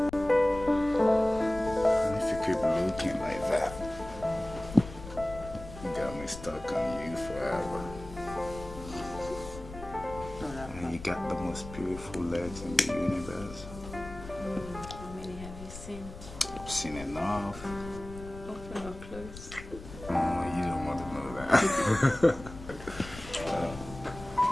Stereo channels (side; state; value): left; noise; rumble, 13 dB below the sound